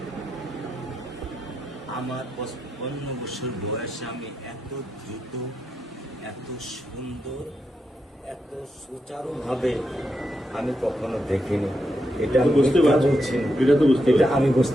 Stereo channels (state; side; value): normal; both; correlation 0.84